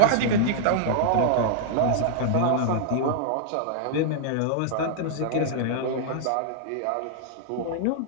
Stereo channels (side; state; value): both; different; correlation -0.01